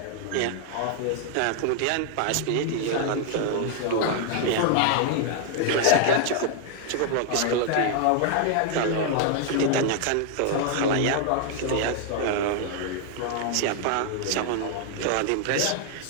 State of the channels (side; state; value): both; different; correlation 0.00